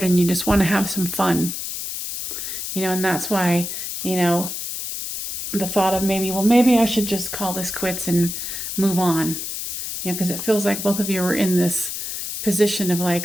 and you just want to have some fun. And that's why, the thought of maybe I should just call this quits and move on. Because it feels like both of you are in this position of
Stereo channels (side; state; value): left; noise; hiss, 5 dB below the sound